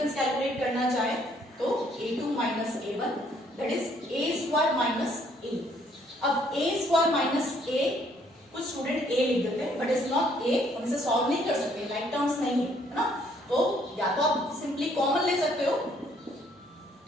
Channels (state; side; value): normal; both; correlation 0.65